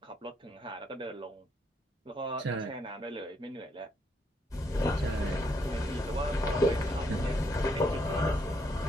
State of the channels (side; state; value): both; normal; correlation 0.74